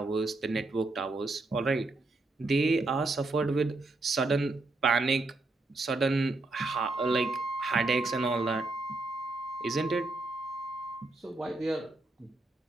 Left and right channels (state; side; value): quieter; left; 3.1 dB